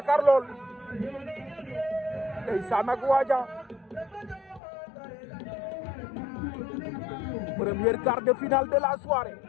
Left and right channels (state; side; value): drops out; right; at 4.6 s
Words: lool ndeysaan ak waaja premier quart de finale de la soirée